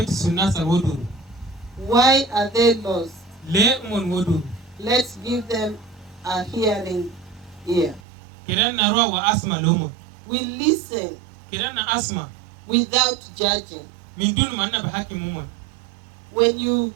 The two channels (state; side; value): drops out; left; at 8.0 s